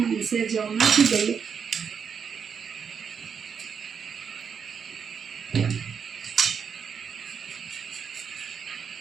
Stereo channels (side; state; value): left; quieter; 6.8 dB